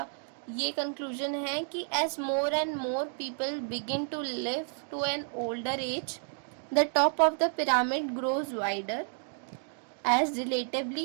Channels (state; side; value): silent; left; 57 dB below the other